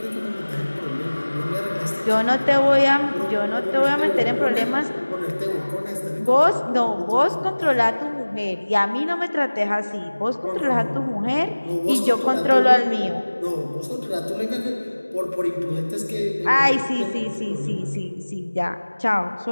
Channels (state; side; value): inverted; both; correlation -1.00